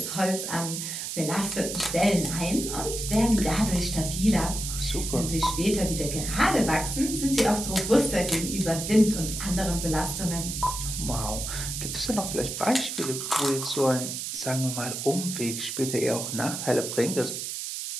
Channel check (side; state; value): right; noise; hiss, 5 dB below the sound